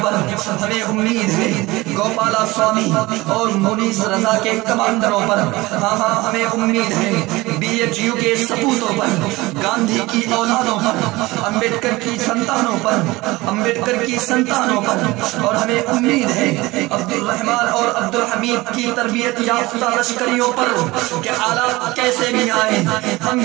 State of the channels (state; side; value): quieter; left; 20.7 dB